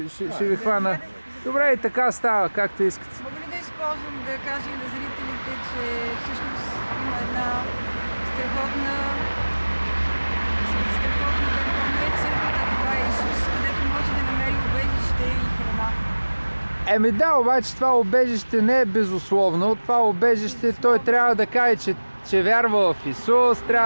ви хвана. Добре, и така става, както искате. Мога ли да използвам да кажа и на зрителите, че всъщност има една страхотна не е църквата, това е Исус, където може да намери убежище и храна. Да, обаче това убежище не е безусловно. Това убежище той трябва да каже, че вярва в Исус,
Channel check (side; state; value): both; inverted; correlation -1.00